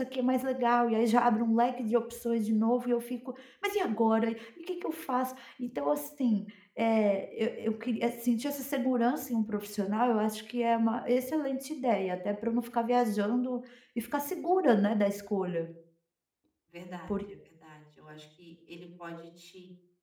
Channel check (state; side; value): identical; both; correlation 1.00